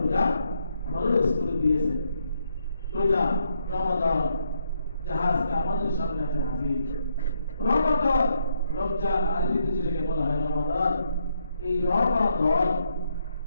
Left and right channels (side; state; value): both; inverted; correlation -0.76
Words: রোজা ফরজ করে দিয়েছে। রোজা, রমাদান, জাহাজটা আমাদের সামনে আছে হাজির। রমাদান, রমজান, আরবিতে যেটাকে বলা হয় রমাদান, এই রমাদান,